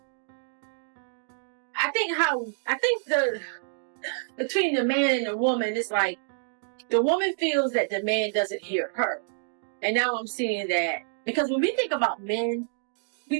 I think the between the man and the woman, it's like the woman feels that the man doesn't hear her, and now I'm seeing that because when we think about men,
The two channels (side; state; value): left; silent; digital silence